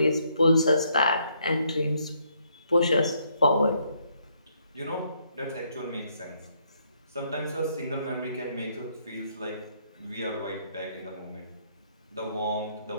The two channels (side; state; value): both; inverted; correlation -0.72